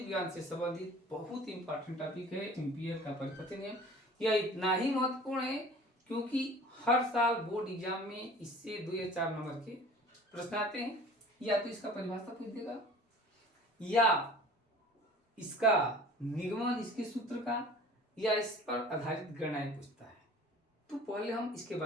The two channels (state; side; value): normal; both; correlation 0.45